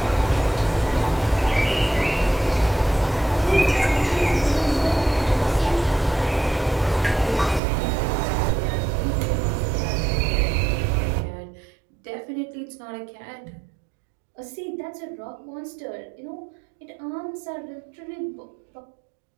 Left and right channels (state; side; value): drops out; left; at 7.6 s